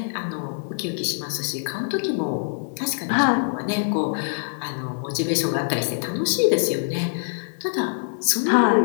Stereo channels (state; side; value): silent; right; digital silence